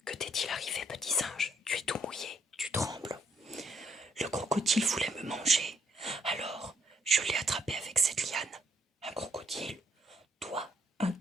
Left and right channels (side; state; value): both; normal; correlation 0.72